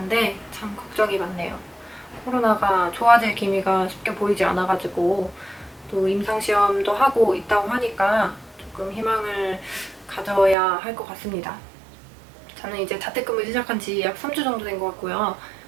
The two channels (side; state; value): left; drops out; at 10.6 s